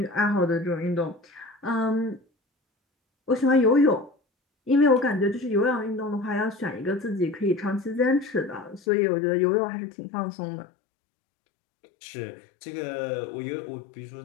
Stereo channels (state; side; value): drops out; right; at 8.8 s